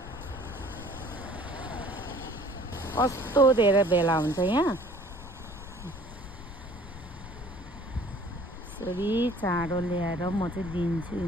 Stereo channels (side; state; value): left; noise; rumble, 14 dB below the sound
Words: कस्तो धेरै भेला हुन्छ यहाँ। यसरी चारो ल्याएर म चाहिँ दिन्छु